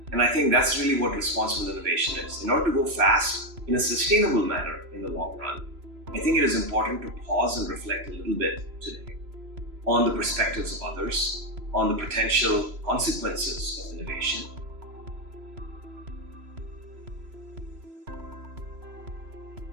And I think that's really what responsible innovation is. In order to go fast in a sustainable manner in the long run, I think it is important to pause and reflect a little bit today on the perspectives of others, on the potential consequences of innovation.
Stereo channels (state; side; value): late; left; 3.0 ms